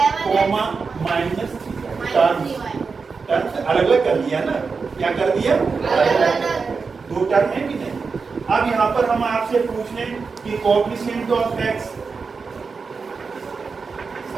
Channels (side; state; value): left; quieter; 4.9 dB